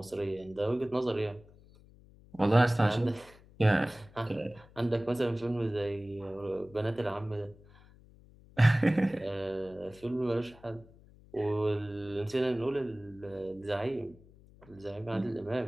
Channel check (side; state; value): left; noise; hum, 24 dB below the sound